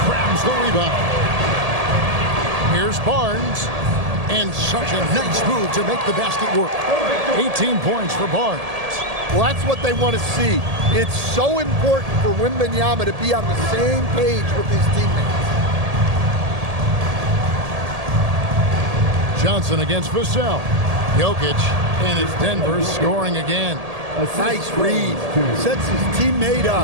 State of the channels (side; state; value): left; late; 1.8 ms